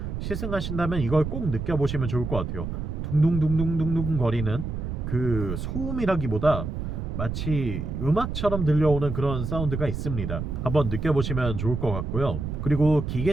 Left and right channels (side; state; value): right; noise; rumble, 4 dB below the sound